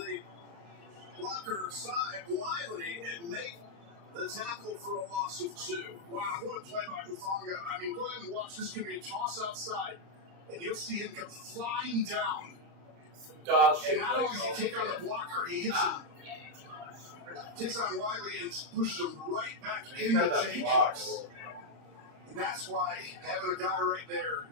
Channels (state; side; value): late; left; 35 ms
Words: blocker aside, Wiley, and make the tackle for a loss of 2. Wow, what a play by Hufanga. I mean, go ahead and watch. This can be a toss outside, and you'll see him come flying down. Dog shit. And not only does he take on the blocker, he hits him. Takes on Wiley and pushes him right back into Jacobs. And that's why having a guy right there